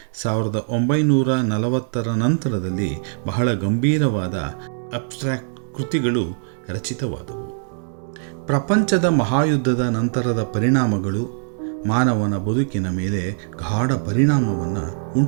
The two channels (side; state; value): left; silent; digital silence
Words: 1940ರ ನಂತರದಲ್ಲಿ ಬಹಳ ಗಂಭೀರವಾದ ಅಬ್ಸ್ಟ್ರಾಕ್ಟ್ ಕೃತಿಗಳು ರಚಿತವಾದವು. ಪ್ರಪಂಚದ ಮಹಾಯುದ್ಧದ ನಂತರದ ಪರಿಣಾಮಗಳು ಮಾನವನ ಬದುಕಿನ ಮೇಲೆ ಗಾಢ ಪರಿಣಾಮವನ್ನು